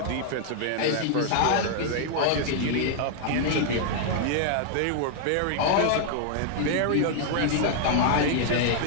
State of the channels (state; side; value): different; both; correlation 0.00